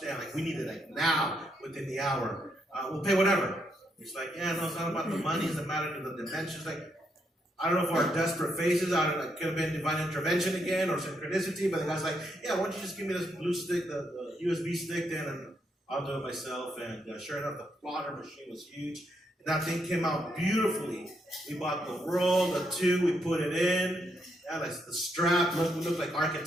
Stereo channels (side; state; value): both; normal; correlation 0.77